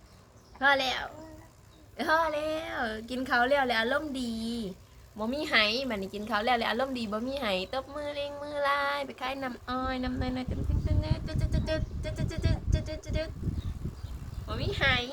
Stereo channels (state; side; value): identical; both; correlation 1.00